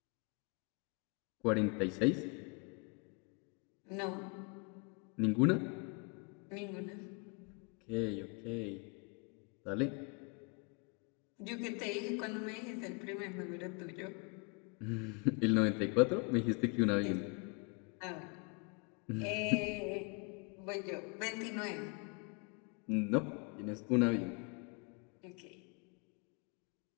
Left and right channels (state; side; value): quieter; right; 33.3 dB